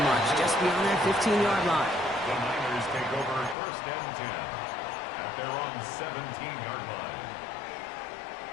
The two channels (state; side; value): drops out; right; at 3.6 s